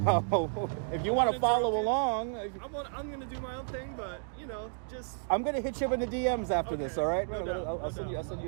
if you want to follow along, I'm gonna do my own thing, but just I'm gonna hit you up in the DMs after this. All right? No doubt. I'll send you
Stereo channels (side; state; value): left; silent; digital silence